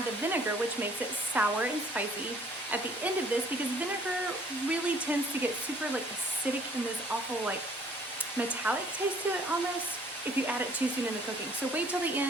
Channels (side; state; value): both; normal; correlation 0.57